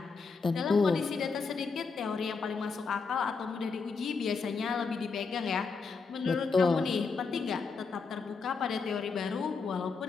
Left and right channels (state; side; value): quieter; right; 4.8 dB